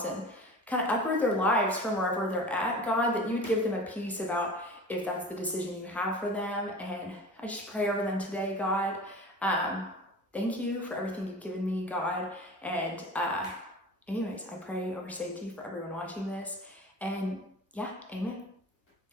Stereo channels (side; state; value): both; normal; correlation 0.37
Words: and kind of uproot their lives from wherever they're at, God, that you'd give them a peace about if that's the decision you have for them. And I just pray over them today, God. Thank you for everything you've given me, God. And anyways, I pray over safety for everyone watching this. And yeah, amen.